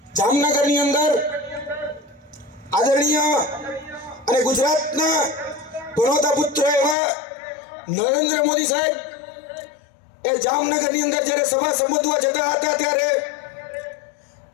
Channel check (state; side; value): drops out; right; at 7.0 s